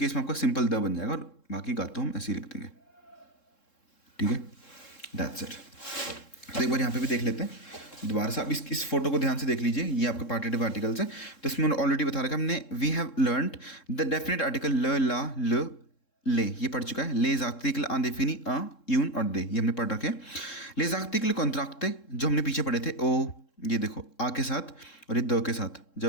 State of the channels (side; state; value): right; late; 3.7 ms